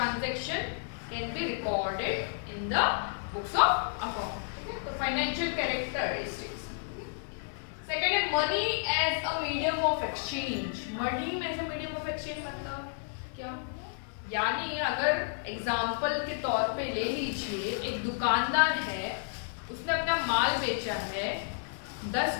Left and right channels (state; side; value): silent; right; digital silence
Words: can be recorded in the books of account. Okay? So financial characteristics. Second है money as a medium of exchange. Money as a medium of exchange मतलब क्या? यानी अगर एग्जाम्पल के तौर पे ले लीजिए, एक दुकानदार है, उसने अपना माल बेचा है 10